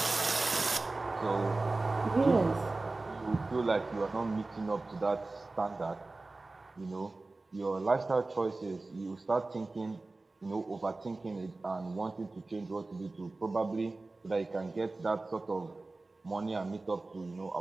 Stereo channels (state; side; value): quieter; left; 3.3 dB